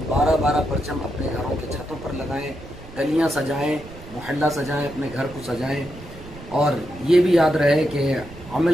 12-12 परचम अपने घरों के छतों पर लगाएं, गलियां सजाएं, मोहल्ला सजाएं, अपने घर को सजाएं और ये भी याद रहे कि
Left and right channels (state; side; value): noise; right; rumble, 16 dB below the sound